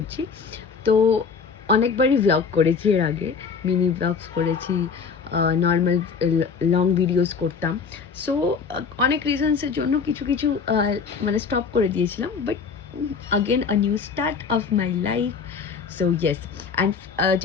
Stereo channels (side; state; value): right; quieter; 5.7 dB